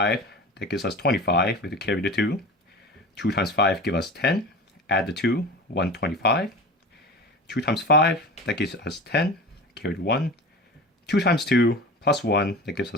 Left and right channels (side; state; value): both; normal; correlation 0.33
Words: that gives us 25, we have to carry the 2. 2 times 5 gives us 10, add the 2, 125. 2 times 5, that gives us 10, carry the 1. 2 times 2 plus 1, that gives